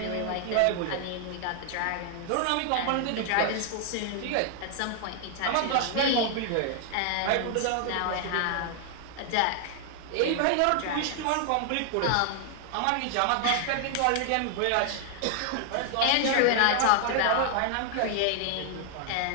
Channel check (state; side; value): different; both; correlation 0.00